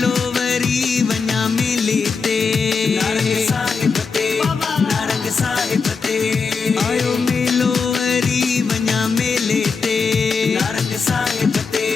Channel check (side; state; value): right; quieter; 5.1 dB